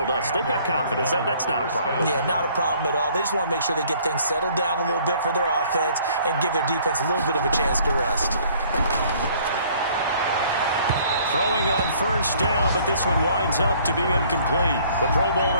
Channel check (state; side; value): inverted; both; correlation -0.58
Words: us they've got confidence. That's not a problem. Yeah, not a problem at all. They just want to make sure they get things settled down a little bit for their offense and give their defense a little bit of a chance to rest. Throwing on 1st down, but this one winds up to be incomplete. The Pro